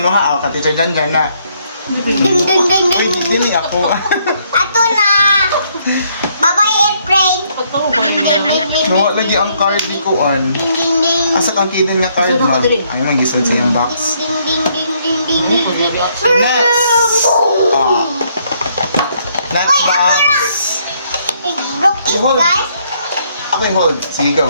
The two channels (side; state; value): both; inverted; correlation -0.70